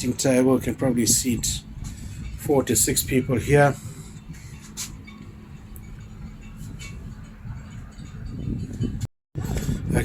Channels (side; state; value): both; identical; correlation 1.00